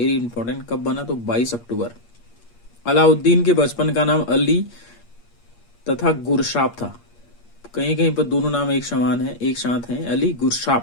important. कब बना? तो 22 अक्टूबर। अलाउद्दीन के बचपन का नाम अली तथा गुरशाप था। कहीं कहीं पर दोनों नाम एक समान है, एक साथ हैं, अली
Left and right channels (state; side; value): late; right; 8.5 ms